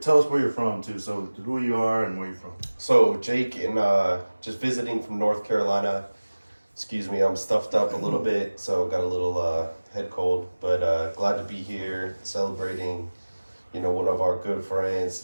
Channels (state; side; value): inverted; both; correlation -1.00